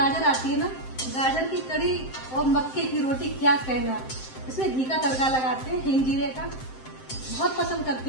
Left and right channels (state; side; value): late; right; 7.7 ms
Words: आती है ना, गाजर की कढ़ी और मक्के की रोटी, क्या कहना। इसमें घी का तड़का लगाते हैं, हिंग जीरे का, बहुत पसंद